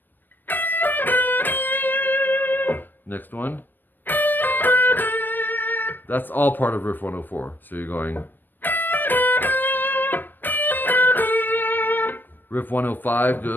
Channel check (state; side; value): late; right; 0.088 ms